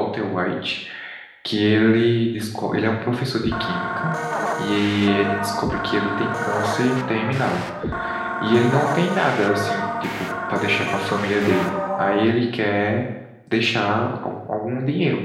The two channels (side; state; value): both; identical; correlation 1.00